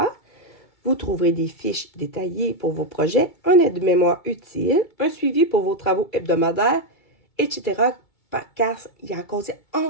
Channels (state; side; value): late; right; 2.3 ms